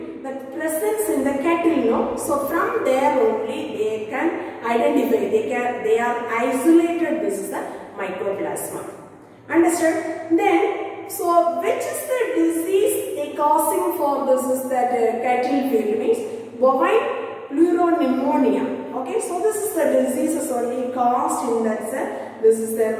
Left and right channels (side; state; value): both; identical; correlation 1.00